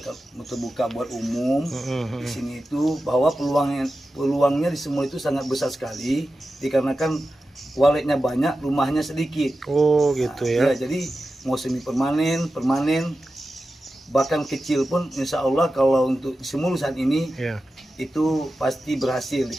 terbuka buat umum di sini itu, bahwa peluangnya di semua itu sangat besar sekali, dikarenakan waletnya banyak, rumahnya sedikit. Oh gitu ya. Jadi mau semi permanen, bahkan kecil pun insya Allah kalau untuk Simulu saat ini itu pasti berhasil,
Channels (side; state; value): both; normal; correlation 0.93